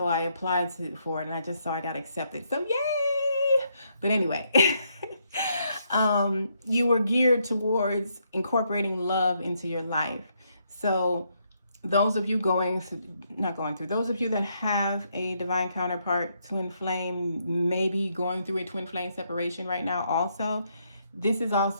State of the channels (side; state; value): both; inverted; correlation -0.75